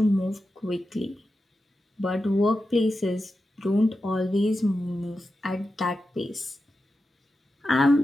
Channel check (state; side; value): normal; both; correlation 0.91